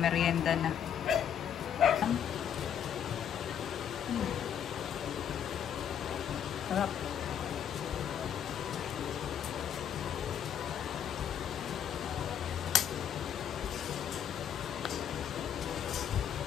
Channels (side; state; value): right; quieter; 8.9 dB